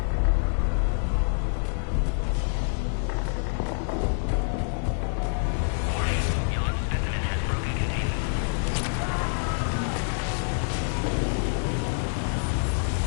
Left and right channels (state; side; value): silent; right; 60 dB below the other